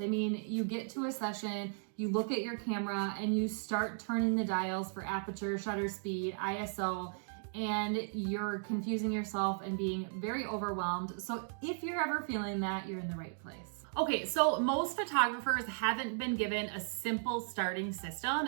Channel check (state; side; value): silent; left; digital silence